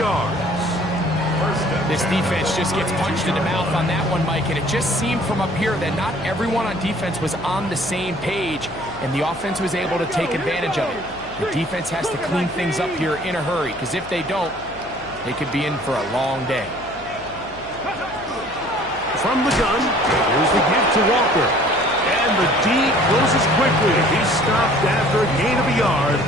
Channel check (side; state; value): left; noise; hum, 20 dB below the sound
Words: This defense just gets punched in the mouth on that one, Mike, and it just seemed from up here that not everyone on defense was on the same page, and the offense was able to take advantage of it. The defense has to clean things up here in a hurry, because if they don't, they could be in for a long day. From the gun, here's the give to Walker. And the D closes quickly. He's stopped after a gain of a yard.